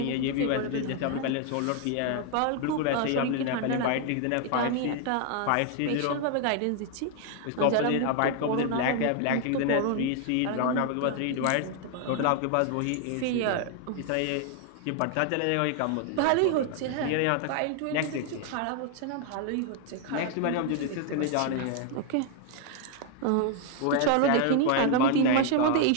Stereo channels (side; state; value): both; different; correlation 0.00